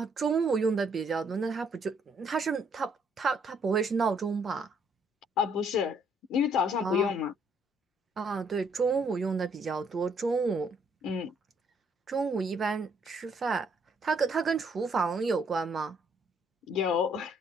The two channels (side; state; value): both; normal; correlation 0.67